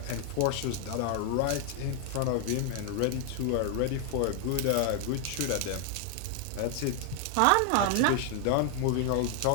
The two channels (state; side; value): different; both; correlation 0.00